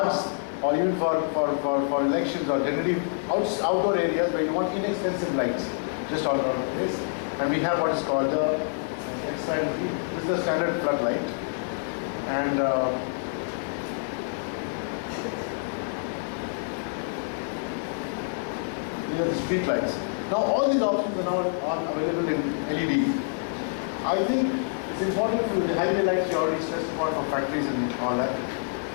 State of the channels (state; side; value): silent; right; digital silence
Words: or even for elections, or generally outdoor areas where you want inexpensive lights just all around the place. And we have what is called this is the standard floodlight, and these are the street lights. Now all these options are now available in LED. I think it's important for the highway lights you already stressed upon for factories and all that.